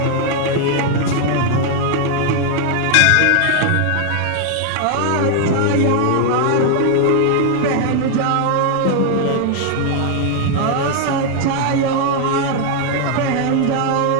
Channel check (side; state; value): both; different; correlation 0.00